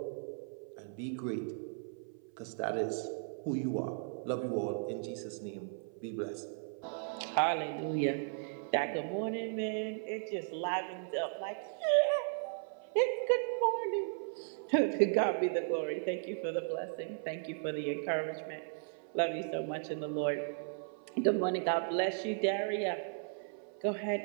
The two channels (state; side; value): silent; left; 54 dB below the other